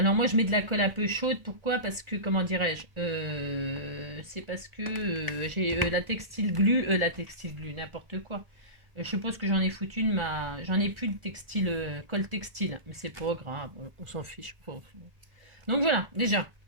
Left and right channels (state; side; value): late; left; 1.4 ms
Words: moi, je mets de la colle un peu chaude. Pourquoi? Parce que, comment dirais-je? C'est parce que j'ai la textile glue, n'importe quoi. Je suppose que j'en ai foutu j'en ai plus de textile, colle textile, mais c'est pas grave, on s'en fiche. Donc voilà, déjà,